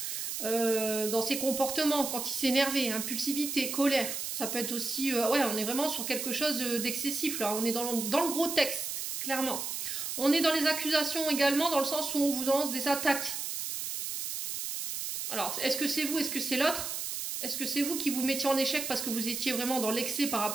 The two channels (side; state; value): right; noise; hiss, 4 dB below the sound